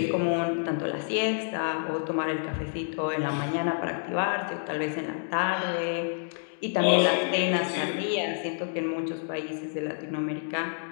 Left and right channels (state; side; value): silent; right; digital silence